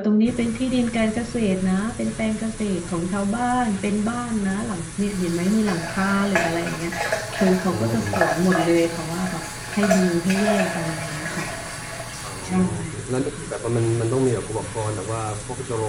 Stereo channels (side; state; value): both; identical; correlation 1.00